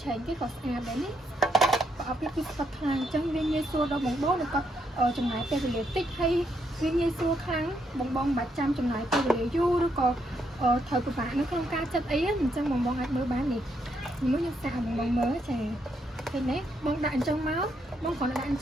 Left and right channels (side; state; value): both; normal; correlation 0.77